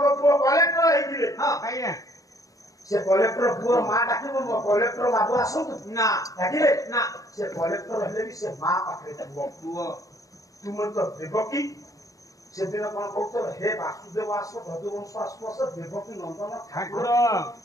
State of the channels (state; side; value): late; right; 0.16 ms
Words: ପୁଅ କଲେକ୍ଟର ହେଇଥିଲେ ଆଜ୍ଞା ସେ କଲେକ୍ଟର ପୁଅର ମା ଡାକିବ ମୋ କଲେକ୍ଟର ବାବୁ ଆସନ୍ତୁ ନା ଡାକିଲେ ନା ସେ କଲେକ୍ଟର ହେଲେ ବି ସେ ମା ପାଖରେ ପୁଅ ତୁମେ ତ ଦେବକୀ ସେଦିନ କଣ କହୁଥିଲ ହେ ବାସୁଦେବ ଆସ ଯଦୁବଂଶ ଆସୁ ଆସ ଦେବକୀ ନନ୍ଦନ ଠାକୁର